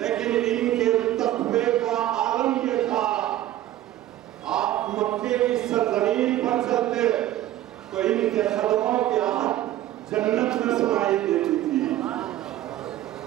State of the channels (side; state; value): left; quieter; 13.8 dB